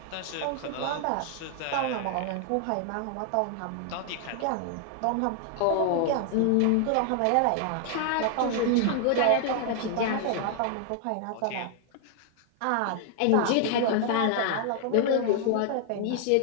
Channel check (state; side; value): different; both; correlation 0.00